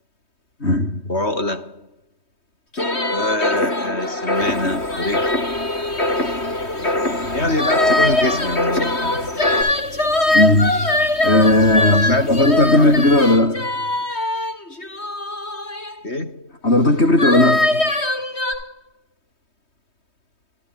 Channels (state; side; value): late; right; 3.2 ms